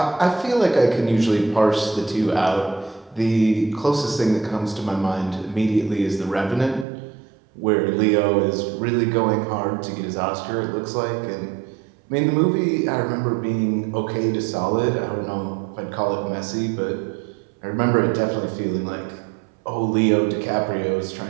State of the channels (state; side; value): drops out; left; at 6.9 s